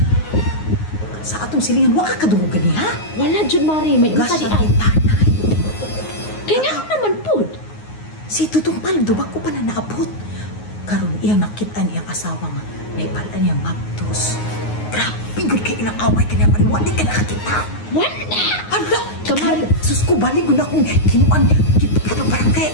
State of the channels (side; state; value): right; late; 9.6 ms